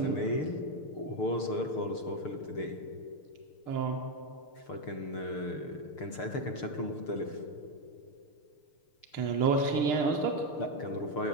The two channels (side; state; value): right; late; 6.7 ms